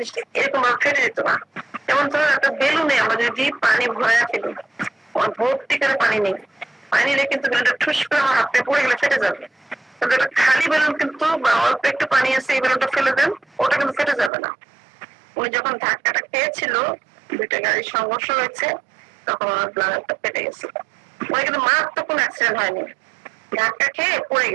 এরকম ভাবে ফেটে যেত না। যেমন ধরো একটা বেলুনে আমরা যদি পানি ভরা ফেলি, ভর্তি করে পানি নেই, পানি নিলে কিন্তু বেলুনটা ঠুস করে আমার হাতে পড়ে গেলে ফেটে যাবে। কিন্তু একটা খালি বেলুন কিন্তু বা অল্প একটু পানি আছে, এই বেলুনটা ফেলে দেন, ওটা কিন্তু ফেটে যাবে না। উনি যখন ধাক্কাটা খেয়েছিল, দুইটা গাড়ির সংঘর্ষ হয়েছে, তখন আমার ব্লাডারটা ফেটে গেছে। ওই কিন্তু মারাত্মক কোনো অ্যাক্সিডেন্ট হয়নি, ধাক্কা খেয়ে পড়ে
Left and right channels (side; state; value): left; drops out; at 14.3 s